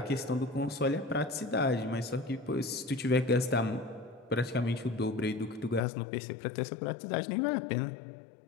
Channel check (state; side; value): drops out; right; at 5.8 s